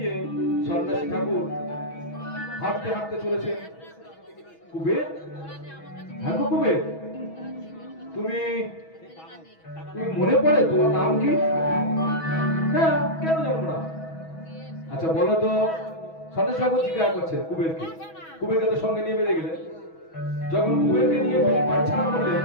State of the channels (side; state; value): right; late; 6.2 ms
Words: সন্ন্যাসী ঠাকুর হাঁটতে হাঁটতে চলেছেন। কুবের, হ্যাঁ গো কুবের, তুমি তুমি মনে পড়ে তোমার নাম কি? হ্যাঁ, কেন জানবো না? আচ্ছা বলো তো। সন্ন্যাসী ঠাকুর জিজ্ঞাসা করছে কুবেরকে। কুবেরকে তো সঙ্গে নিয়ে বেরিয়ে গেলেন। যখন কুবেরকে নিয়ে বাড়ি ছাড়া করলেন,